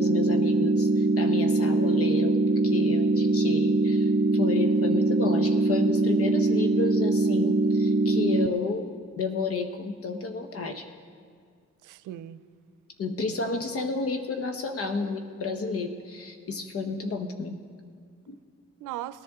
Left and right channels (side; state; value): both; normal; correlation 0.55